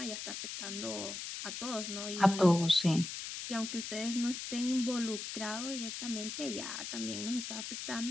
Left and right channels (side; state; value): left; noise; hiss, 6 dB below the sound